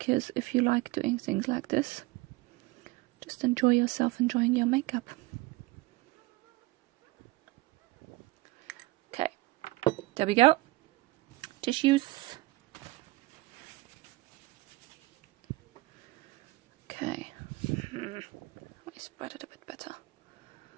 if you like doing things like this, just enjoy yourself enjoying your makeup. Okay, there we go. Tissues. Okay, let me spread it a bit better.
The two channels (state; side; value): quieter; left; 20.8 dB